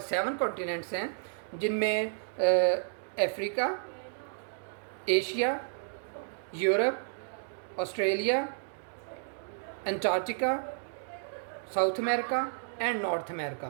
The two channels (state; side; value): silent; left; digital silence